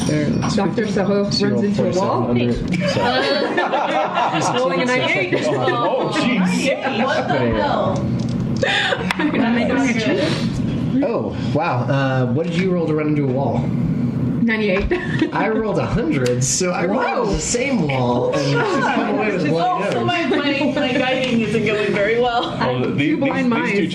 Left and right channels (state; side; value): identical; both; correlation 1.00